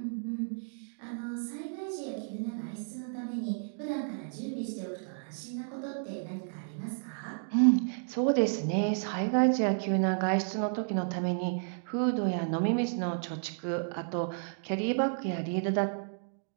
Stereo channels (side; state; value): left; silent; digital silence